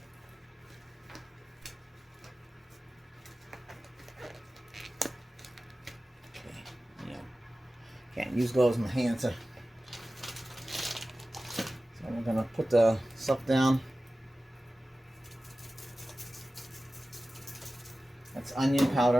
Can't use gloves in my hands. So we're gonna put the stuff down. That's onion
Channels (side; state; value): both; normal; correlation 0.95